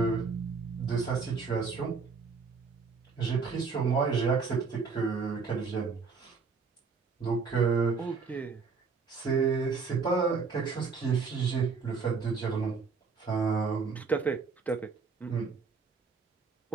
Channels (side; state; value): left; quieter; 5.0 dB